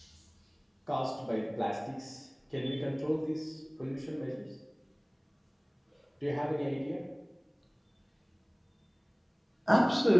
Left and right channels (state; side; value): identical; both; correlation 1.00